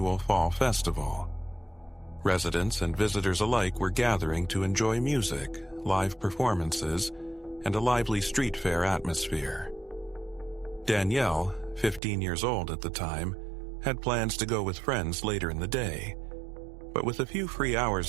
fall festival. Residents and visitors alike were gathering to enjoy music, live performances, and a lively street fair atmosphere. Danielle, 15 years old at the time, had plans to go with friends later in the day, but with a few free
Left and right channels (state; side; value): drops out; left; at 12.0 s